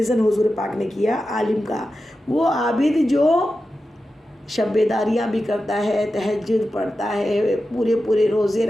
حضور پاک نے کیا عالم کا، وہ عابد جو شب بیداریاں بھی کرتا ہے، تہجد پڑھتا ہے، پورے روزے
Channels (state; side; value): normal; both; correlation 0.92